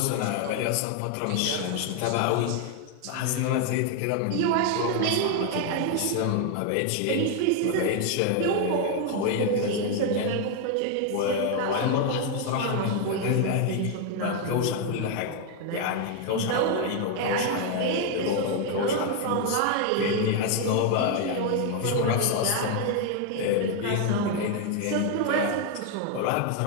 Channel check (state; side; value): different; both; correlation 0.01